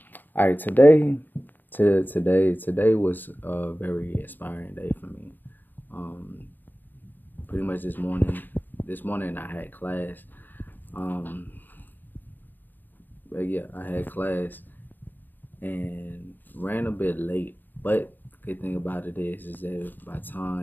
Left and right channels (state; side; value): late; right; 0.089 ms